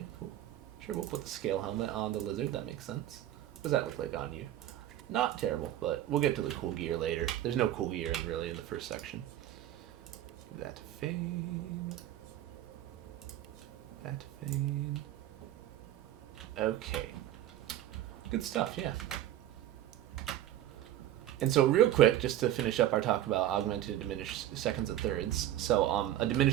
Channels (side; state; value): left; quieter; 12.6 dB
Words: cool. Sure, we'll put the scale helmet on the lizard, that makes sense. What does that look like on you? Not terrible, but we'll get to the cool gear later. There's no cool gear really in the first section. That fade. That fade. Okay. Good stuff, yeah. And so real quick, just to finish up our talk about augmented and diminished seconds and thirds. So a